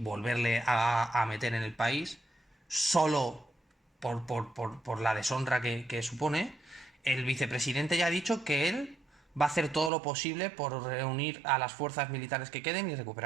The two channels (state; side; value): drops out; left; at 9.9 s